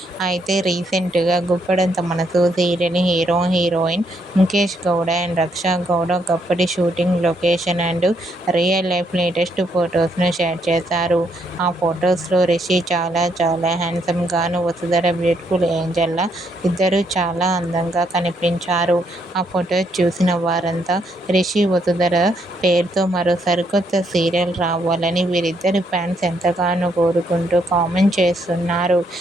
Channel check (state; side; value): normal; both; correlation 0.74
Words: అయితే రీసెంట్గా Guppedantha Manasu serial hero heroine Mukesh Gowda and Raksha Gowda ఒకప్పటి shooting location and real life latest ఫొటోస్ను షేర్ చేశారు. ఆ ఫొటోస్లో రిషి చాలా హ్యాండ్సమ్ గాను, వసుధర బ్యూటిఫుల్ ఏంజల్ లా ఇద్దరూ చాలా అందంగా కనిపించారు. ఆ ఫొటోస్ చూసిన వారంతా రిషి వసుధర పేరుతో మరో సరికొత్త సీరియల్ రావాలని వీరిద్దరి ఫ్యాన్స్ ఎంతగానో కోరుకుంటూ కామెంట్ చేస్తున్నారు.